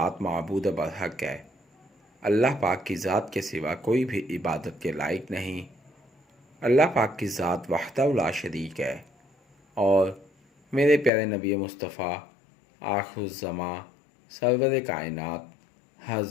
معبود برحق ہے، اللہ پاک کی ذات کے سوا کوئی بھی عبادت کے لائق نہیں۔ اللہ پاک کی ذات وحدہ لا شریک ہے، اور میرے پیارے نبی مصطفیٰ آخر الزماں سرور کائنات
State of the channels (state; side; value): drops out; right; at 11.1 s